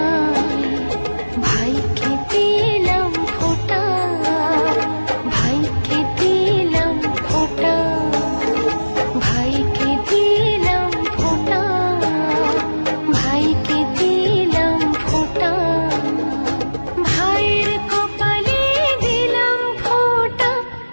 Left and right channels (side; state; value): both; inverted; correlation -1.00